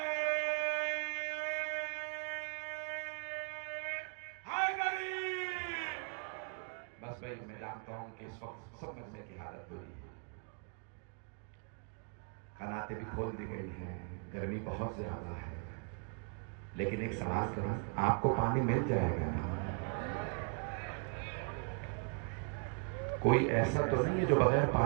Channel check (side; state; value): left; quieter; 38.5 dB